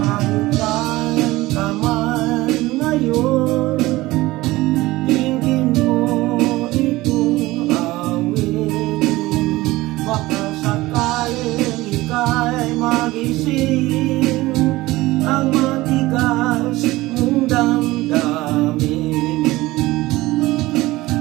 saan ka man ngayon, tingin mo itong awitin. Baka sakaling ika'y magising ang matigas mong damdamin.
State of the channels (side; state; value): left; quieter; 18.9 dB